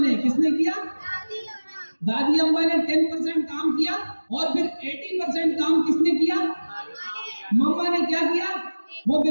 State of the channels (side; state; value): both; inverted; correlation -1.00